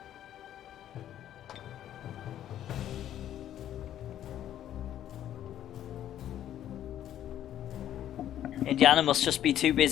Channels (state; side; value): quieter; right; 11.4 dB